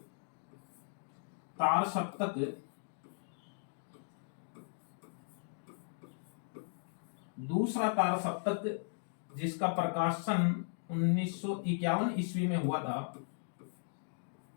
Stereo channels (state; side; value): silent; right; digital silence